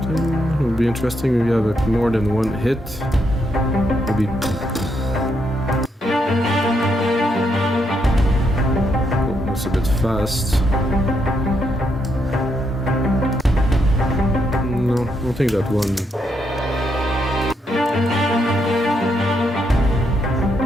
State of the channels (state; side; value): normal; both; correlation 0.78